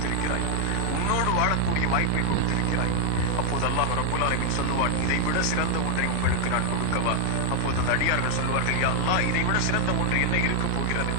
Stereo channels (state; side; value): different; both; correlation 0.00